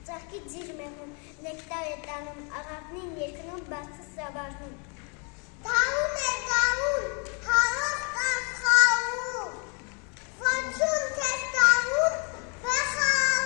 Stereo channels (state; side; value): quieter; right; 36.0 dB